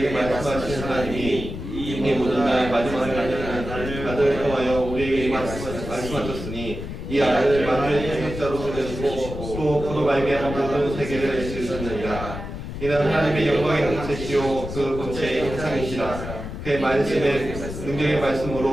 말씀하신 하나님이 이미 모든 날 마지막 날에는 아들을 통하여 우리에게 말씀하셨으니 이 아들을 만유의 태생자로 보내시고 또 그로 말미암아 모든 세계를 지으셨느니라. 이는 하나님의 영광의 형체시요 그 본체의 형상이시라. 그의 말씀의 능력의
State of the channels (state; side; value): noise; left; rumble, 8 dB below the sound